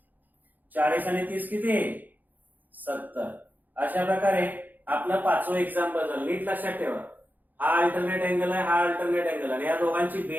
40 आणि 30 किती? 70. अशा प्रकारे आपलं 5वं एक्झाम्पल झालं. नीट लक्षात ठेवा, हा अल्टरनेट अँगल आहे, हा अल्टरनेट अँगल, आणि या दोघांची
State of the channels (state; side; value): late; left; 0.084 ms